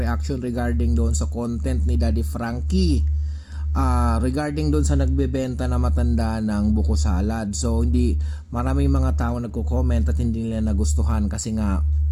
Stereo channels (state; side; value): identical; both; correlation 1.00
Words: regarding doon sa content ni Daddy Frankie regarding doon sa nagbebenta na matanda ng buko salad. So hindi maraming mga tao nagko-comment at hindi nila nagustuhan kasi nga